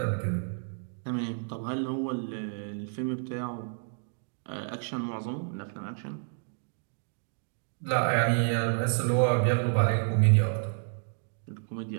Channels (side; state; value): left; silent; digital silence